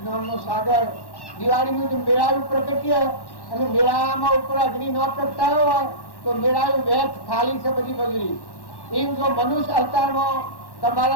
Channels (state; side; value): late; right; 1.1 ms